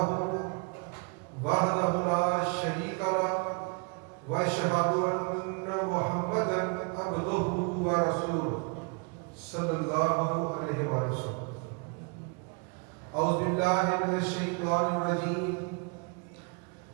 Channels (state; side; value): quieter; left; 33.9 dB